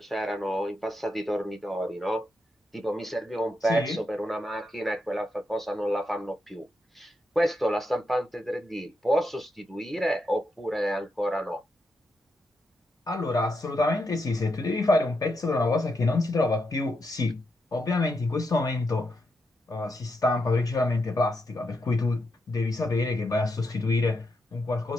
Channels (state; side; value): normal; both; correlation 0.83